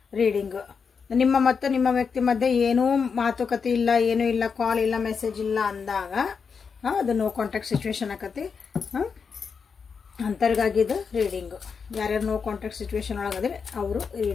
ರೀಡಿಂಗ್. ನಿಮ್ಮ ಮತ್ತು ನಿಮ್ಮ ವ್ಯಕ್ತಿ ಮಧ್ಯೆ ಏನೂ ಮಾತುಕತೆ ಇಲ್ಲ, ಏನೂ ಇಲ್ಲ, ಕಾಲ್ ಇಲ್ಲ, ಮೆಸೇಜ್ ಇಲ್ಲ ಅಂದಾಗ ಅದು ನೋ ಕಾಂಟ್ಯಾಕ್ಟ್ ಸಿಚುವೇಶನ್ ಆಕತಿ. ಅಂಥವ್ರಿಗಾಗಿದ್ದು ರೀಡಿಂಗು. ಯಾರ್ಯಾರು ನೋ ಕಾಂಟ್ಯಾಕ್ಟ್ ಸಿಚುವೇಶನ್ ಒಳಗದ್ರೆ ಅವರು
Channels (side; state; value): right; quieter; 5.8 dB